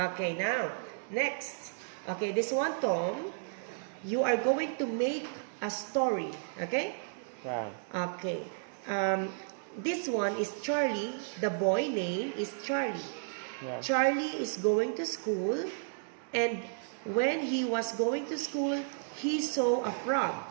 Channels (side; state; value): left; silent; digital silence